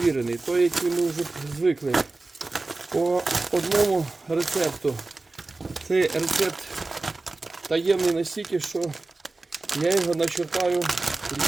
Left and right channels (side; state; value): left; quieter; 3.3 dB